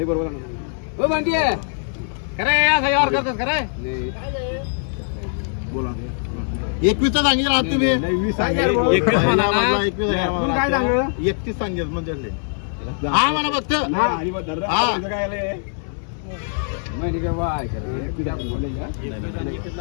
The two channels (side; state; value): right; silent; digital silence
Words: खरे असं यावर करतोस खरे बोला 21 सांगितलं आहात तुम्ही 21 म्हणा ना. 31 सांगितलं म्हणजे हा म्हणा फक्त हा